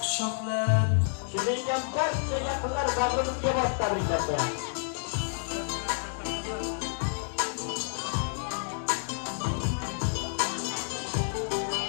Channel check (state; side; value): silent; right; digital silence